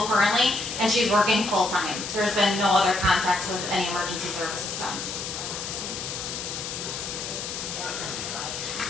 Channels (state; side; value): noise; left; hiss, 6 dB below the sound